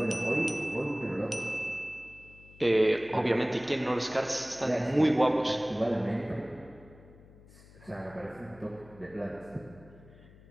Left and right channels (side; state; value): left; noise; hum, 23 dB below the sound